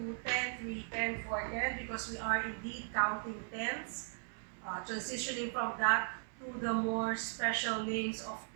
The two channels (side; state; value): left; silent; 53 dB below the other